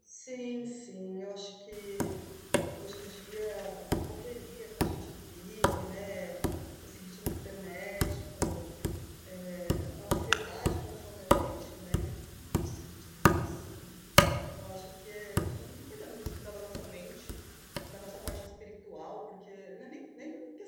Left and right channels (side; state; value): both; identical; correlation 1.00